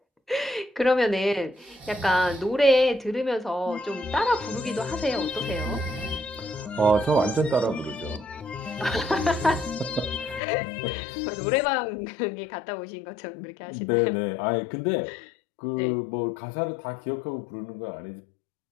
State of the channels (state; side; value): drops out; right; at 10.4 s